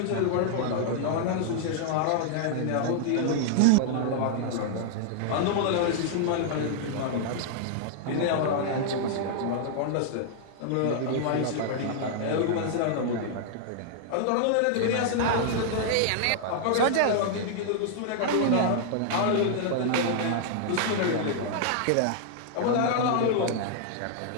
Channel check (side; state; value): both; different; correlation -0.01